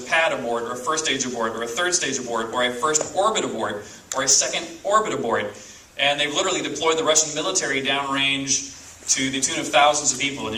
a pad aboard, or a first stage aboard, or a third stage aboard, or a first orbit aboard, or a second orbit aboard. And they've literally deployed the Russian military downrange to the tune of thousands of people.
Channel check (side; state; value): both; identical; correlation 1.00